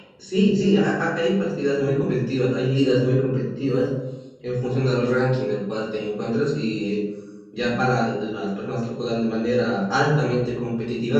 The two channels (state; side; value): identical; both; correlation 1.00